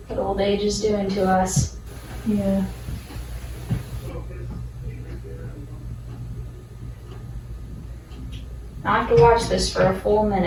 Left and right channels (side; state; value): both; identical; correlation 1.00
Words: What old age is doing to us. Yeah. I have to watch this for a full